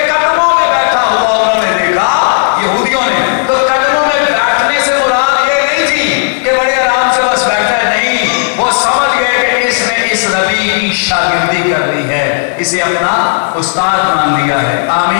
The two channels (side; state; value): right; silent; digital silence